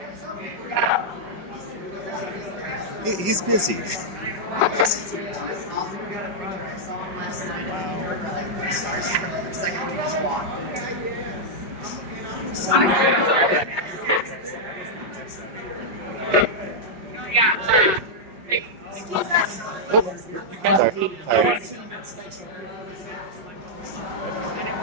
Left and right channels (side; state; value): left; late; 5.3 ms